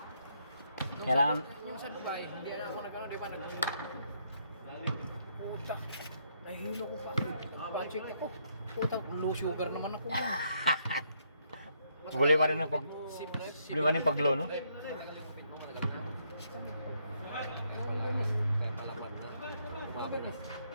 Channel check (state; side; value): inverted; both; correlation -0.73